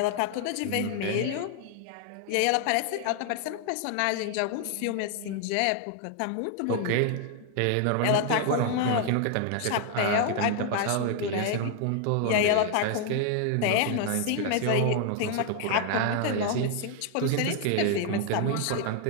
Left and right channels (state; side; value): different; both; correlation 0.00